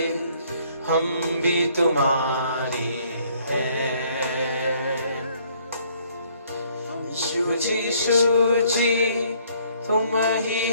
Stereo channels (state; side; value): inverted; both; correlation -0.63